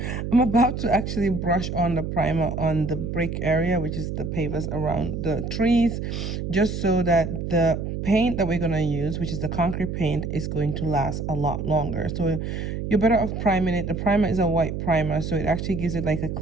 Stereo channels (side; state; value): right; noise; hum, 4 dB below the sound